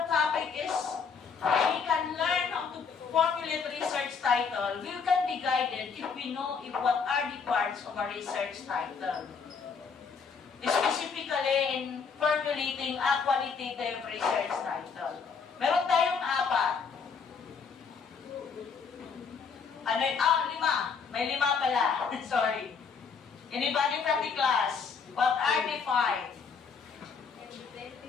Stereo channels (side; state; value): right; quieter; 5.7 dB